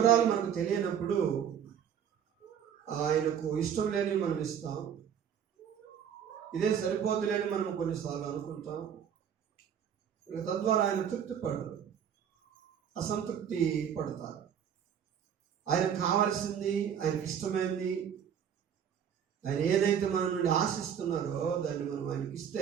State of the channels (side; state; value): left; quieter; 8.5 dB